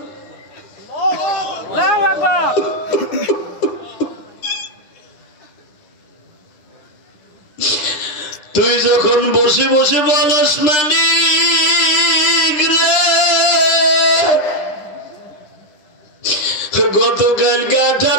তুই যখন বসে বসে বলস মালিক রে গতকালকে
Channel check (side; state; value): right; late; 9.8 ms